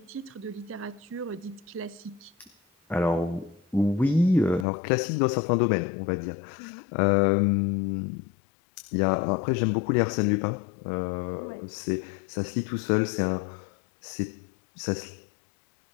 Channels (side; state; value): right; drops out; at 4.7 s